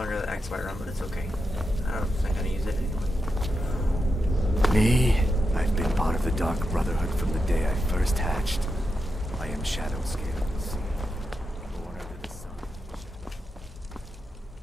the X run, but it's okay. I don't think I'm gonna use it anyway. Me? I've been part of the Dark Brotherhood from the day I first hatched. I am Shadow Scale of the Sea, born under the sun.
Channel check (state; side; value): normal; both; correlation 0.87